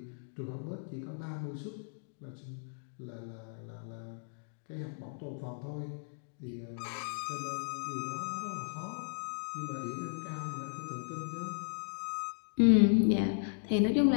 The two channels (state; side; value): silent; right; digital silence